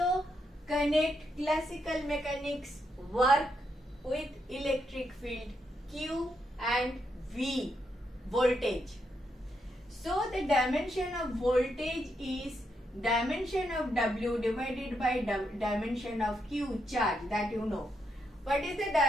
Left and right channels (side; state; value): both; normal; correlation 0.80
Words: connect classical mechanics work with electric field Q and V, voltage. So the dimension of voltage is dimension of W divided by dimension of Q, charge, that you know. What is the